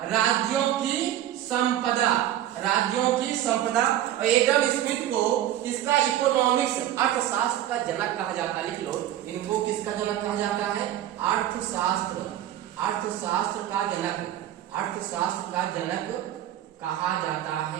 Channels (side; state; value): left; quieter; 12.2 dB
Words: राज्यों की संपदा। राज्यों की संपदा। और एडम स्मिथ को किसका? इकोनॉमिक्स, अर्थशास्त्र का जनक कहा जाता है। लिख लो, इनको किसका जनक कहा जाता है? अर्थशास्त्र का जनक, अर्थशास्त्र का जनक कहा जाता